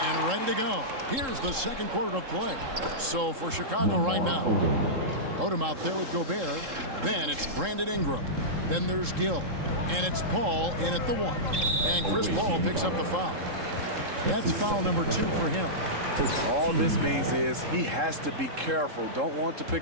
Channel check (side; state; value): left; late; 3.7 ms